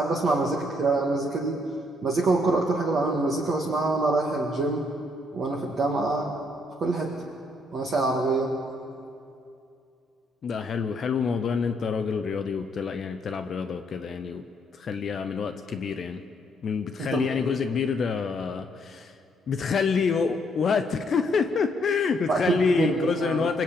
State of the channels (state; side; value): normal; both; correlation 0.71